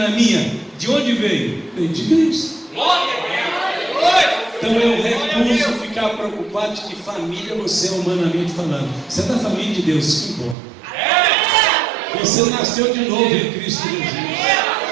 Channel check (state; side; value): drops out; left; at 10.6 s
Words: minha? De onde veio? Veio de Cristo. Então eu recuso ficar preocupado de que família você é, humanamente falando. Você é da família de Deus, isso que importa. Você nasceu de novo em Cristo Jesus.